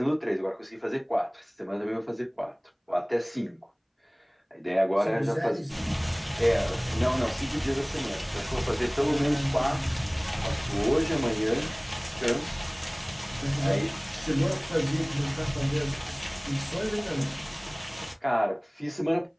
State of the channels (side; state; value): both; identical; correlation 1.00